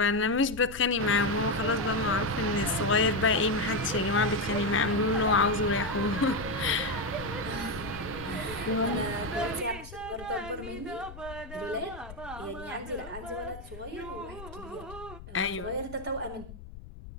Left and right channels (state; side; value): noise; left; rumble, 15 dB below the sound